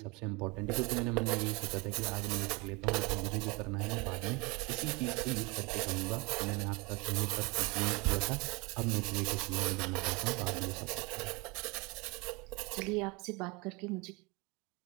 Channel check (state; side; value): quieter; left; 26.8 dB